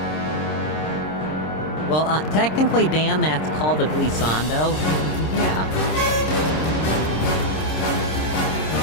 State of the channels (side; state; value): right; late; 26 ms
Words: Well, technically, Dan, that's called a glissando. Yeah.